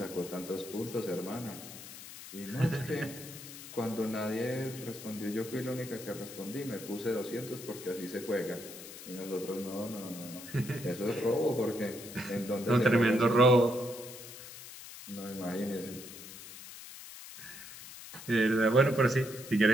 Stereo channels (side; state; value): left; noise; hiss, 14 dB below the sound